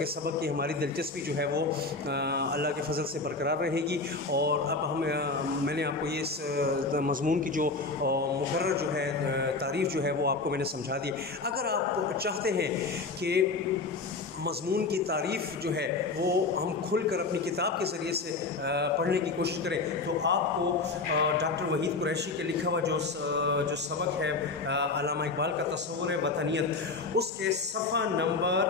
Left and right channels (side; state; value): right; quieter; 3.8 dB